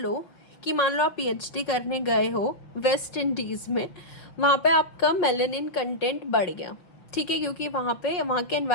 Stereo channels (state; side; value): late; right; 5.7 ms